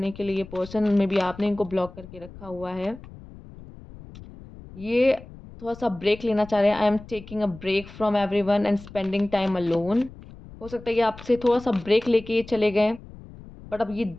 के लिए ये पर्सन, मेबी आपने इनको ब्लॉक करके रखा हुआ है। ये थोड़ा-सा ब्रेक लेना चाह रहे हैं, I am taking a break from everyone and spending time alone. हो सकता है ये आपसे थोड़ा-सा ब्रेक लेके ये चले गए। बट अब ये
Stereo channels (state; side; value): noise; left; rumble, 17 dB below the sound